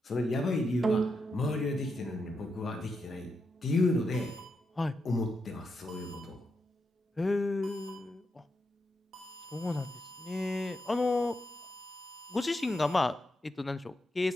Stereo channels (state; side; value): normal; both; correlation 0.84